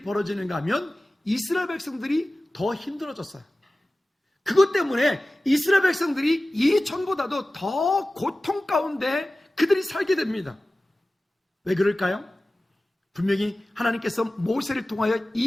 벌어지는가 하면 이스라엘 백성들이 더 힘들어졌어요. 그것 때문에 이스라엘 백성들이 이전보다도 더 고통 가운데 그들이 살게 됩니다. 왜 그럴까요? 분명히 하나님께서 모세를 통하여 이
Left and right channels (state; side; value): normal; both; correlation 0.96